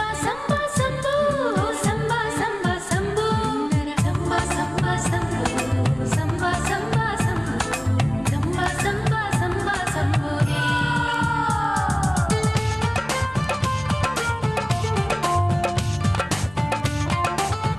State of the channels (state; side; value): noise; left; rumble, 21 dB below the sound